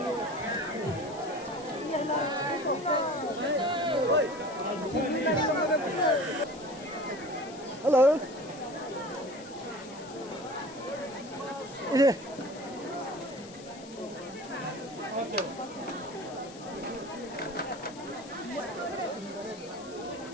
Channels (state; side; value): noise; left; hiss, 18 dB below the sound